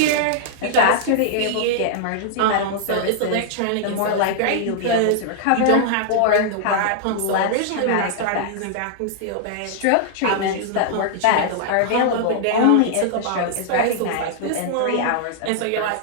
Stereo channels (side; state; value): both; different; correlation -0.01